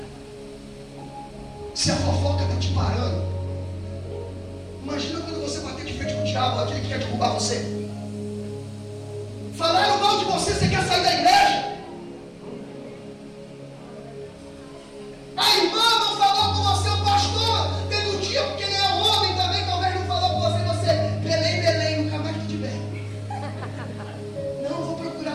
Se a fofoca está te parando, imagina quando você bater de frente com o diabo, aquele que quer derrubar você. Falaram mal de você, você quer sair da igreja? A irmã não falou com você, o pastor, tendo um dia, porque ele é homem também, talvez não falou com você, Belém, nunca mais te tiver. Não, vou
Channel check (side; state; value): both; identical; correlation 1.00